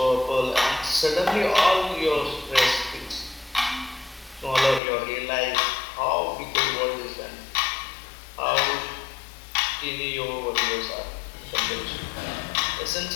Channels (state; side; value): drops out; right; at 4.8 s